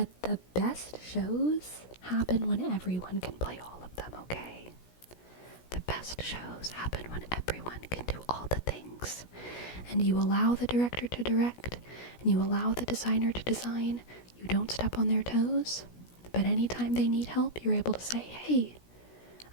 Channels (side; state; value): right; late; 17 ms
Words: the best shows happen when everyone can play all of them, okay? The best shows happen when everyone can do all the things. And you allow the director to direct, and you allow the designer to design. You don't step on their toes, but anytime they need help, you're able to say, hey,